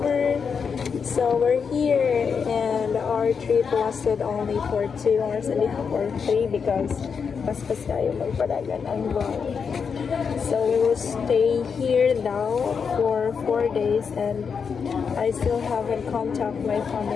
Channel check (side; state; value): right; quieter; 6.1 dB